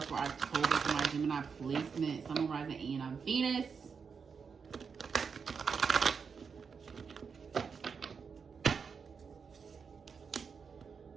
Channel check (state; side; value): quieter; left; 5.9 dB